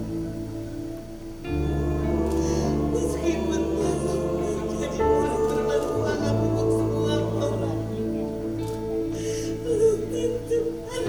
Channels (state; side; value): identical; both; correlation 1.00